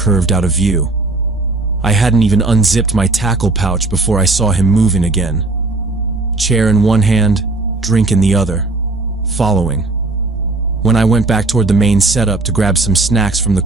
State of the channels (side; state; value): left; quieter; 3.1 dB